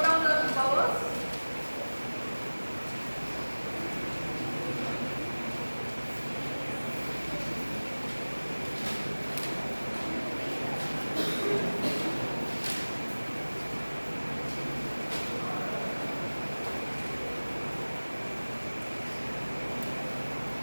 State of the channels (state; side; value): inverted; both; correlation -1.00